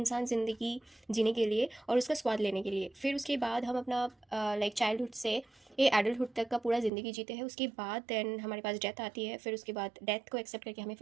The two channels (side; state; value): left; drops out; at 6.9 s